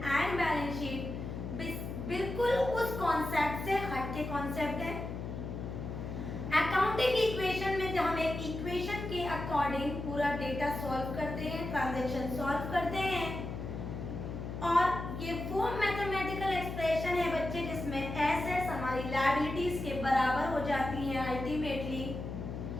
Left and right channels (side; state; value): left; noise; hum, 6 dB below the sound